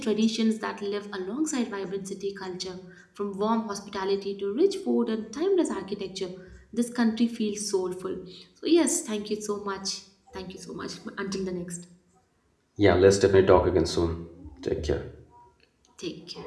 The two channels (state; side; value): identical; both; correlation 1.00